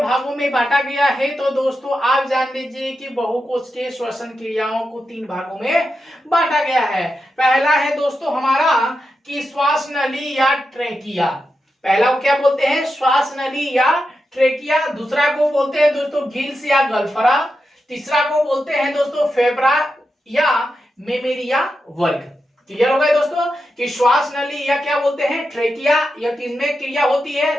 में बांटा गया है। तो दोस्तों आप जान लीजिए कि बहुकोशिकीय श्वसन क्रियाओं को 3 भागों में बांटा गया है। पहला है दोस्तों हमारा कि श्वास नली या ट्रेकिया, पहला को क्या बोलते हैं, श्वास नली या ट्रेकिया। दूसरा को बोलते हैं दोस्तों गिल्स या गल्फरा। तीसरा को बोलते हैं दोस्तों फेब्रा या मेमेरिया वर्ग। क्लियर हो गए दोस्तों कि श्वास नली या क्या बोलते हैं, ट्रेकिया, या किसमें क्रिया होती है,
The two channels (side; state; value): both; normal; correlation 0.88